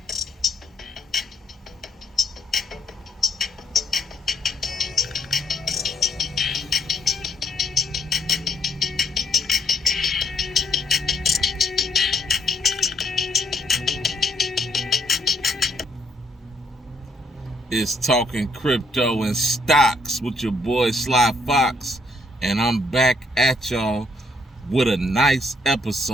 It's Talking Crypto and Stocks with your boy Sly Fox, and I'm back at y'all with a nice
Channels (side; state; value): both; normal; correlation 0.69